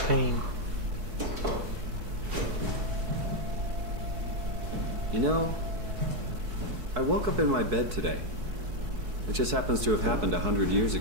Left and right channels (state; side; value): late; left; 4.6 ms